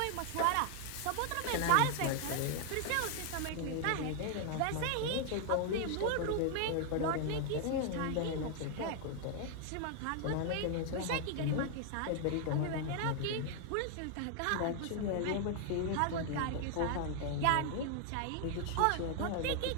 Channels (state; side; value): different; both; correlation 0.00